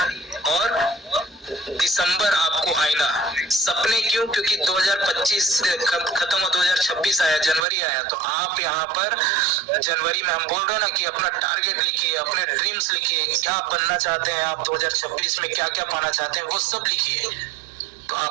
और दिसंबर आपको आईना। सपने क्यों? क्योंकि 2025 खत्म हो 2026 आया, जनवरी आया, तो आप यहाँ पर जनवरी में हम बोल रहे हैं ना कि अपना टारगेट लिखिए, अपने ड्रीम्स लिखिए, क्या बनना चाहते हैं आप 2026 में, क्या क्या पाना चाहते हैं वो सब लिखिए। तो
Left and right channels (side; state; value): left; drops out; at 7.6 s